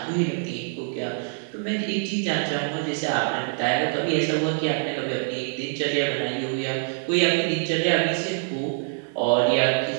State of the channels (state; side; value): silent; left; 59 dB below the other